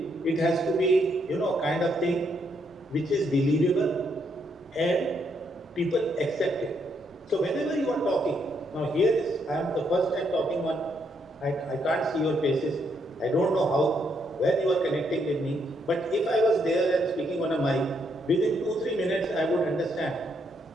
It has to be, kind of thing which is believable and people accept it. So whenever you are talking, now here is, I am the first time talking on, I can't see your faces. I don't know how, when you are connecting with me. But if I was there and speaking on a mic, within 2-3 minutes I would understand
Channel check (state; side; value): normal; both; correlation 0.75